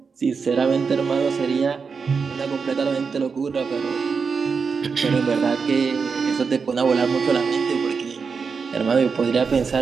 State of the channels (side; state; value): left; quieter; 5.4 dB